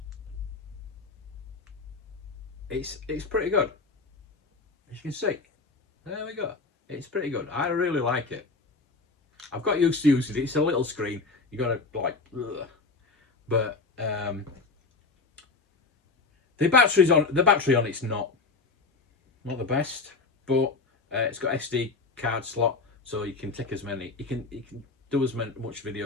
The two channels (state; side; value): quieter; right; 4.0 dB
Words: it's pretty good. As you can see, there we go. It's pretty good. I really like it. I've got used to using it. It's a little screen. You gotta like, ugh. But the battery on it's not the best, but it's got SD card slot, so you can take as many. You can do as much